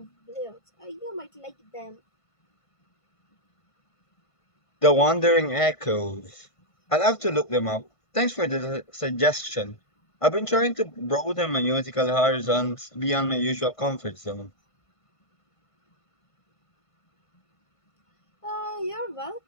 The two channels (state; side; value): late; right; 1.5 ms